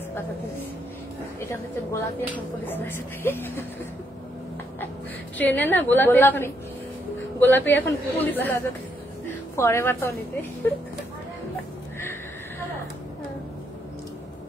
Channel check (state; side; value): normal; both; correlation 0.76